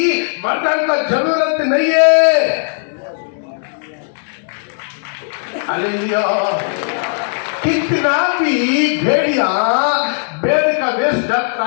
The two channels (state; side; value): silent; right; digital silence